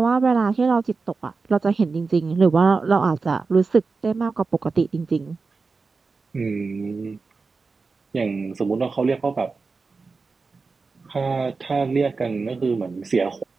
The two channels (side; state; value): left; quieter; 4.3 dB